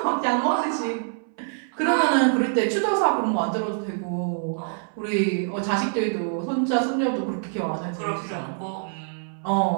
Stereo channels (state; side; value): silent; left; 62 dB below the other